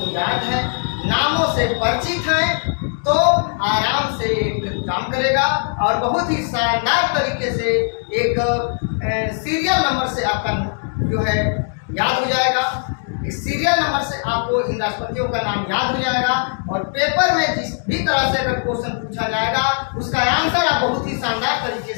याद है, नामों से परिचित हैं, तो आराम से एक काम करेगा और बहुत ही शानदार तरीके से एक सीरियल नंबर से आपका जो है याद हो जाएगा। इस सीरियल नंबर से आपको इन राष्ट्रपतियों का नाम याद हो जाएगा और पेपर में जिस भी तरह से अगर क्वेश्चन पूछा जाएगा उसका आंसर आप बहुत ही शानदार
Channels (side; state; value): right; silent; 66 dB below the other